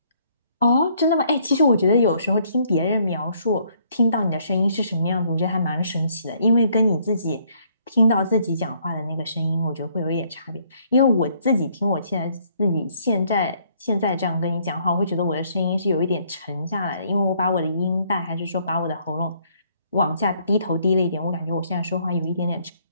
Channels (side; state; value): both; inverted; correlation -0.66